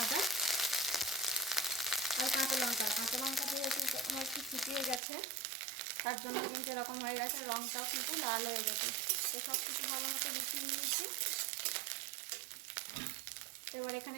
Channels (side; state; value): left; drops out; at 5.0 s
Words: আদা আর কাঁচা লঙ্কা। কাঁচা লঙ্কা দিয়ে আমার একটু শুকিয়ে গেছে, তার জন্য কিন্তু এরকম হয়ে গেছে, রঙটাও কিন্তু লাল হয়ে গেছে। তো সব কিছু ভালো মতো মিশিয়ে নিয়েছি। এবার